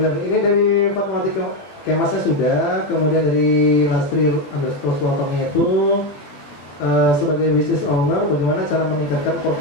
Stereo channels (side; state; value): right; late; 20 ms